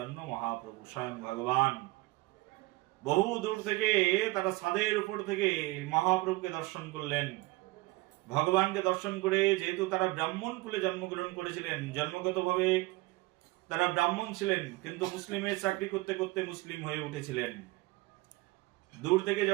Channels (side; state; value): left; quieter; 21.5 dB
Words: মহাপ্রভু, স্বয়ং ভগবান। বহু দূর থেকে তারা ছাদের উপর থেকে মহাপ্রভুকে দর্শন করলেন। ভগবানকে দর্শন করে, যেহেতু তারা ব্রাহ্মণ কুলে জন্মগ্রহণ করেছিলেন, জন্মগতভাবে তারা ব্রাহ্মণ ছিলেন, কিন্তু মুসলিমের চাকরি করতে করতে মুসলিম হয়ে উঠেছিলেন। দূর থেকে